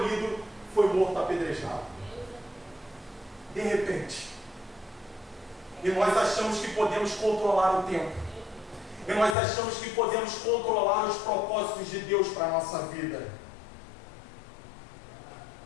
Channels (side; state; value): right; drops out; at 9.3 s